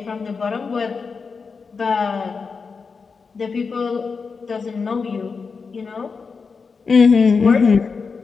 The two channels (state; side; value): quieter; right; 5.0 dB